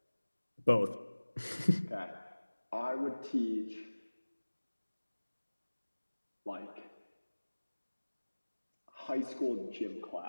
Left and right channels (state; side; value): inverted; both; correlation -1.00